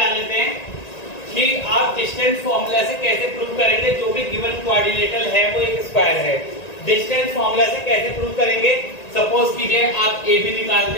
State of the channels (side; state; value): right; late; 1.9 ms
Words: लेते हैं कि आप डिस्टेंस फॉर्मूला से कैसे प्रूव करेंगे जो भी गिवन कोऑर्डिनेटर है वो एक स्क्वायर है। डिस्टेंस फॉर्मूला से कैसे प्रूव करेंगे? सपोज कीजिए आप AB